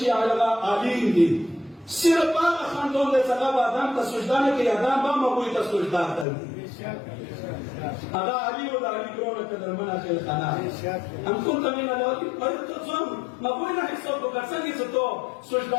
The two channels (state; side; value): drops out; right; at 6.2 s